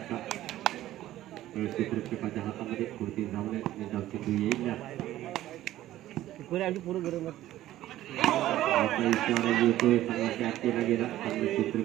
क्षेत्ररक्षकाच्या हातामध्ये कोणती धाव नाही धाव चेंडू येईल आता इशारा येतोय चांगला कॅच केला गेला चांगलं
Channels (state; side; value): quieter; left; 14.2 dB